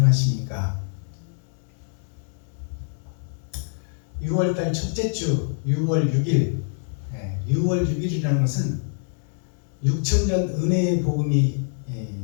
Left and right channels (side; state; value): right; silent; 62 dB below the other